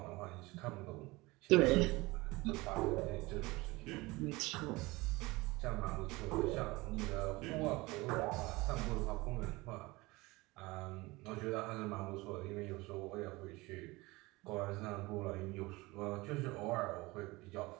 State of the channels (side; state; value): left; quieter; 22.2 dB